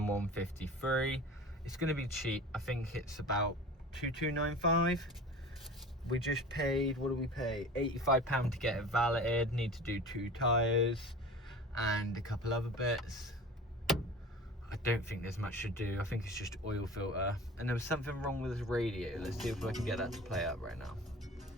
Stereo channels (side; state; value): both; normal; correlation 0.38